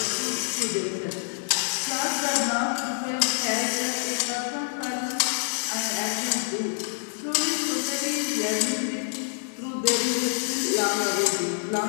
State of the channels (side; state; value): right; silent; 60 dB below the other